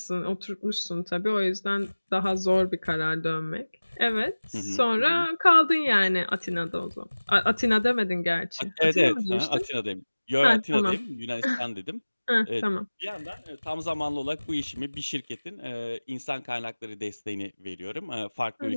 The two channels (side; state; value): both; inverted; correlation -1.00